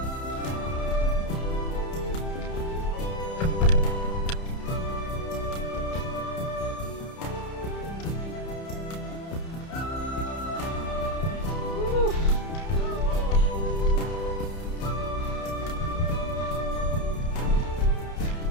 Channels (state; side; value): late; right; 30 ms